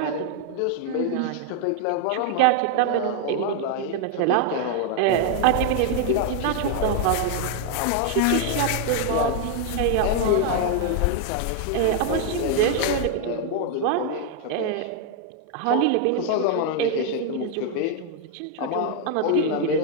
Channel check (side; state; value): both; different; correlation 0.00